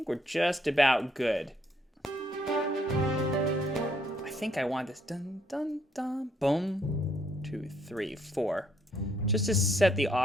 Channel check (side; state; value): both; normal; correlation 0.70